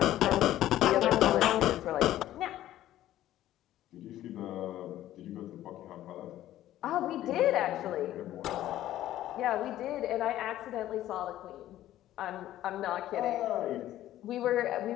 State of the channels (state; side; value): quieter; right; 13.5 dB